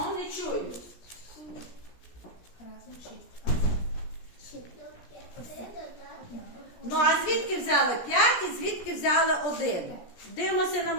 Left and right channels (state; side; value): late; right; 17 ms